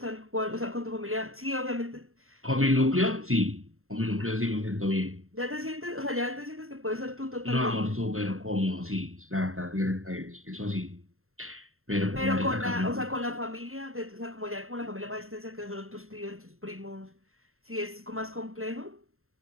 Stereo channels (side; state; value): left; late; 0.62 ms